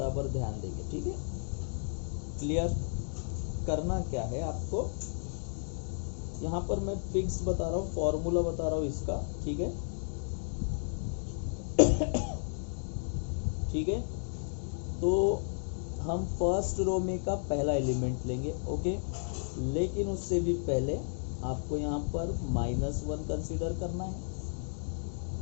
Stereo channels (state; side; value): silent; right; digital silence